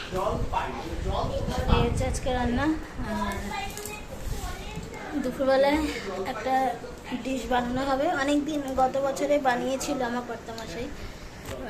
এই হচ্ছে আজকে রান্না। দুপুরবেলায় একটা ডিশ বানানো হবে, অনেক দিন গত বছরে বানিয়েছিল আমার কর্তামশাই।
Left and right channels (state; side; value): identical; both; correlation 1.00